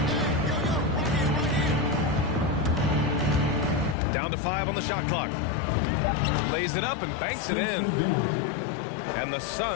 Down to 5 on the shot clock. Lays it up and banks it in. And the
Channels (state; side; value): drops out; right; at 4.0 s